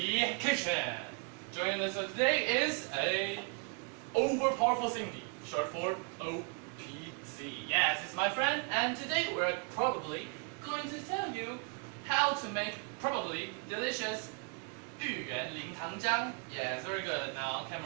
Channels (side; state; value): left; quieter; 37.7 dB